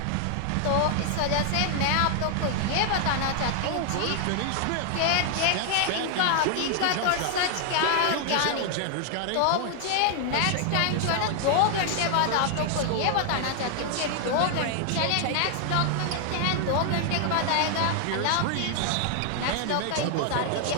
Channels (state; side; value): different; both; correlation 0.00